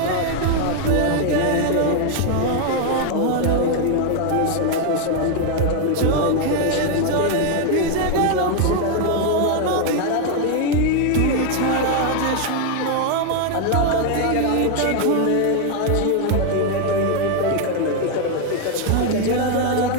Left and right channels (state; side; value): different; both; correlation 0.01